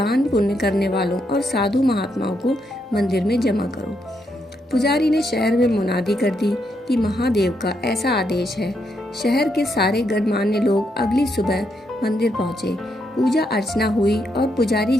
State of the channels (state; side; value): normal; both; correlation 0.79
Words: पुण्य करने वालों और साधु महात्माओं को मंदिर में जमा करो। पुजारी ने शहर में मुनादी कर दी कि महादेव का ऐसा आदेश है। शहर के सारे गणमान्य लोग अगली सुबह मंदिर पहुंचे। पूजा अर्चना हुई और पुजारी